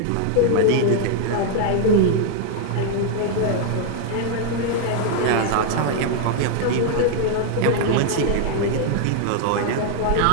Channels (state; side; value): different; both; correlation 0.00